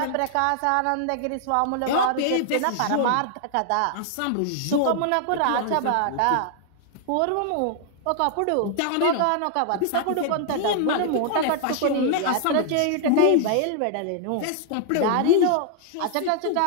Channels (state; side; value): different; both; correlation 0.00